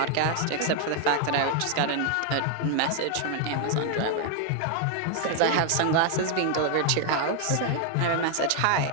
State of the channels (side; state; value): both; different; correlation 0.00